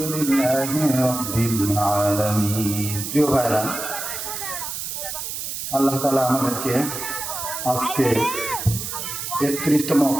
لله رب العالمين. প্রিয় ভাইরা, আল্লাহ তাআলা আমাদেরকে আজকে 31তম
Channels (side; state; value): right; noise; hiss, 5 dB below the sound